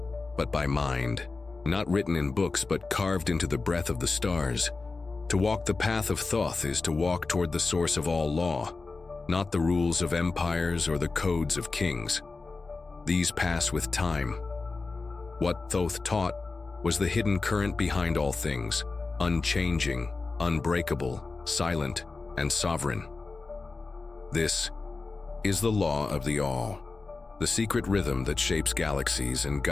but by mind. Not written in books, but carved into the breath of the stars. To walk the path of Thoth is to walk toward the source of all law, not the rules of empires or the codes of kings. These pass with time. What Thoth taught was the hidden current behind all things, unchanging, unbreakable, silent, and sovereign. This is the law of the all, the secret rhythm that shapes galaxies and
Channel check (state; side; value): quieter; right; 3.9 dB